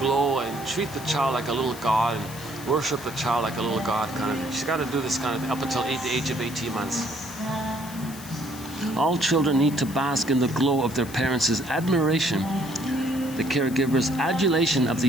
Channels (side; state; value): left; noise; hiss, 16 dB below the sound